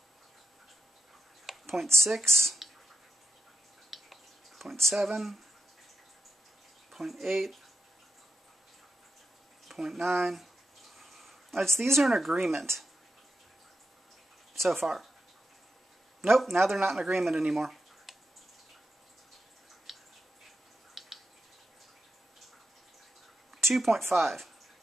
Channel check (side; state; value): both; normal; correlation 0.84